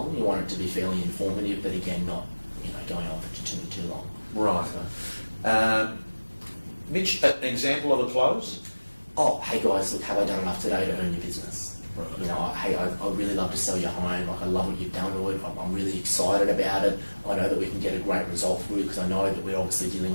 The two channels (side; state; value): both; inverted; correlation -1.00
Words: You want it to be fairly informative, but again, not, you know, going on for too long. Right. So. Mitch, an example of a close? Oh, hey guys, look, have I done enough today to earn your business? Right. You know, hey, I'd really love to sell your home. Like, I love what you've done to it. I'm really excited about it. I know that we can get a great result for you, because I know that we're obviously dealing